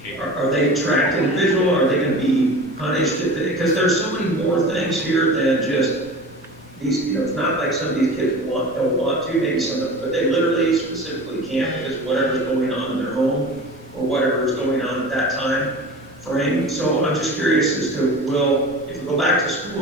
are they tracked individual? Are they going to be punished? Because there's so many more things here than just these, it's not like some of these kids don't want to, maybe some of them, but they literally specifically can't because whatever's going on in their home or whatever is going on at that time frame. So I'm just curious as to, if we go back to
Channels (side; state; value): both; normal; correlation 0.35